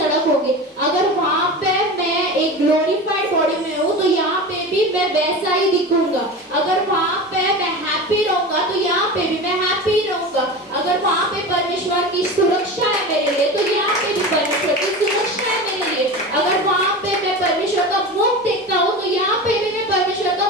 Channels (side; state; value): both; normal; correlation 0.29